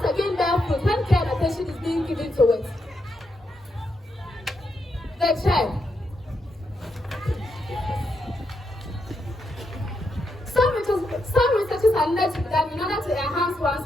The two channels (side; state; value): both; normal; correlation 0.82